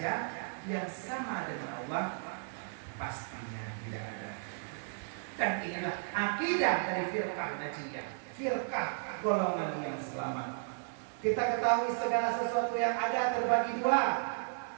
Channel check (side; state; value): left; silent; 55 dB below the other